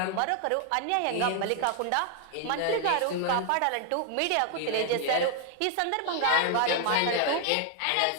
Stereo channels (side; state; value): both; different; correlation 0.00